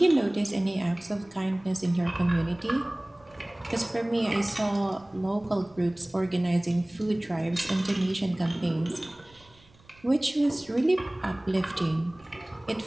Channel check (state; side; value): noise; right; rumble, 28 dB below the sound